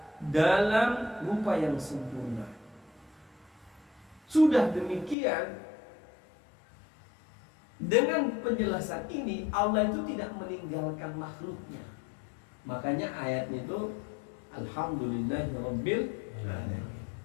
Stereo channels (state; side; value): drops out; right; at 5.2 s